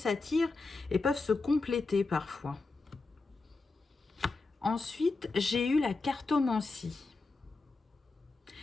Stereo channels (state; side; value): quieter; right; 3.7 dB